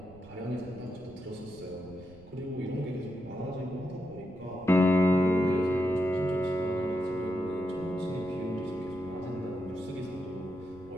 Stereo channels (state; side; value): noise; right; rumble, 20 dB below the sound